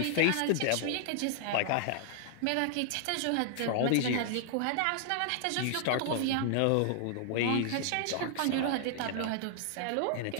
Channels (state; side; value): different; both; correlation 0.00